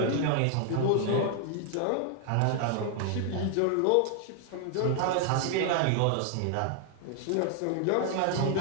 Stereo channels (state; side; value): different; both; correlation 0.00